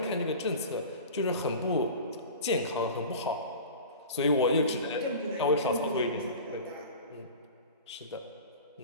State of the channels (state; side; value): inverted; both; correlation -0.36